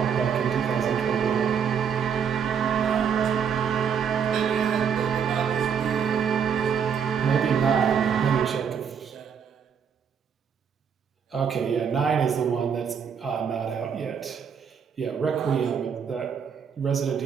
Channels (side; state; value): left; quieter; 7.3 dB